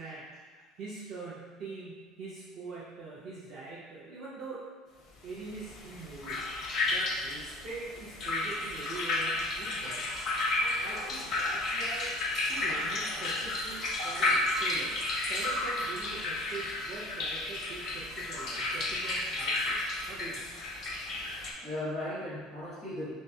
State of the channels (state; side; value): normal; both; correlation 0.45